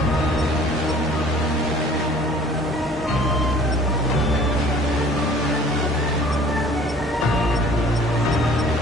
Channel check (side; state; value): both; normal; correlation 0.51